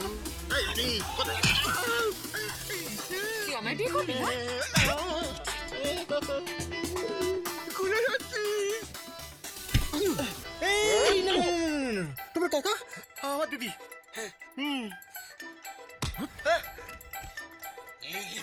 তুই আমায় বিয়ে করবি না? খুলে যাচ্ছি। এই না, তোমার কাকা? আমার দিদি। লেগে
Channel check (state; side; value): identical; both; correlation 1.00